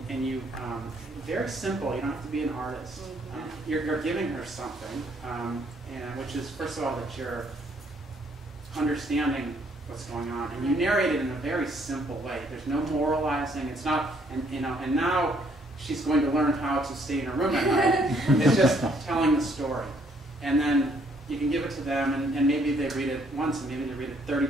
you very simple. You don't have to be an artist. You're giving her something, and which is, first of all, that you're understanding what's going on, and you narrate it in a very simple way. There's no moralizing. It's not, and now she's going to learn how to stay in her room at night. It's just telling the story. And then you can give it to them, and maybe they read it once, and maybe they read it 30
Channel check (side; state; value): both; normal; correlation 0.67